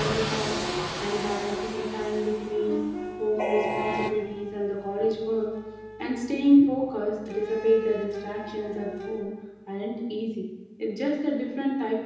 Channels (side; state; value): both; identical; correlation 1.00